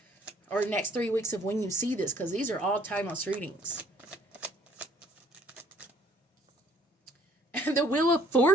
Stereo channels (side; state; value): both; normal; correlation 0.60